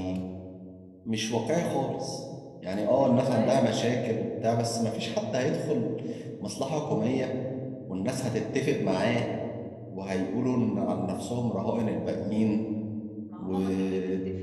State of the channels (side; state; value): both; identical; correlation 1.00